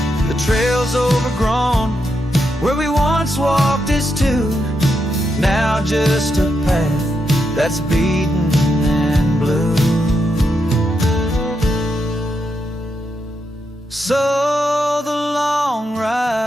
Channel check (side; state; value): both; normal; correlation 0.83